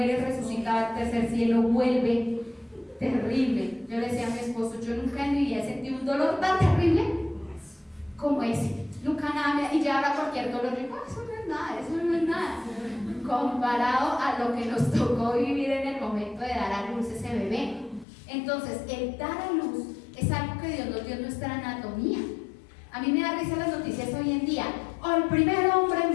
resucita al tercer cielo, vuelve terrible. Yo le decía a mi esposo, yo nunca en mi vida he sentido un dolor tan terrible como ese, nunca nada, y ya ahora cualquier dolor, digo, eso no es nada, comparado a lo que nos tocó vivir en el momento de dar a luz ese bebé. Entonces, el dar a luz es algo que Dios nos dio en nuestra anatomía. A mí me da risa las noticias hoy en día. El primer hombre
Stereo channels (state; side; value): drops out; right; at 18.1 s